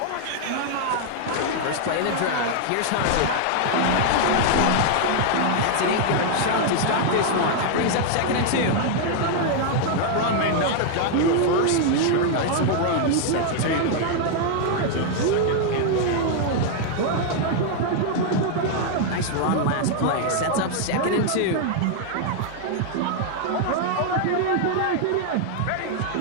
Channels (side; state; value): both; different; correlation 0.00